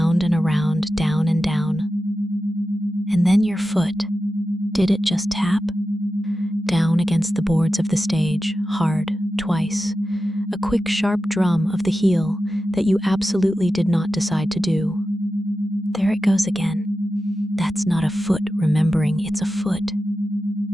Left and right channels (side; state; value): both; normal; correlation 0.92